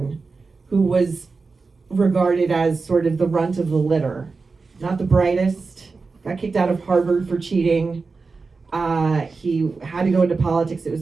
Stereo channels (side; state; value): left; quieter; 4.3 dB